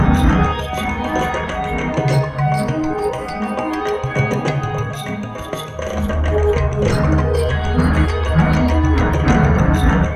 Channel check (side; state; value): both; identical; correlation 1.00